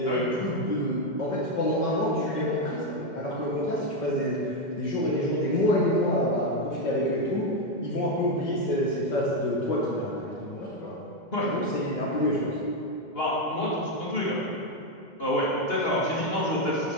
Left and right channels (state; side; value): late; right; 2.1 ms